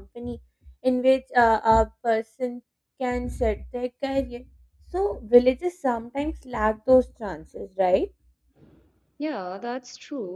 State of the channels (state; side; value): identical; both; correlation 1.00